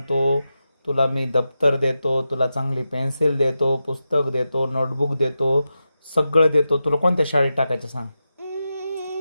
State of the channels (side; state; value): both; inverted; correlation -0.90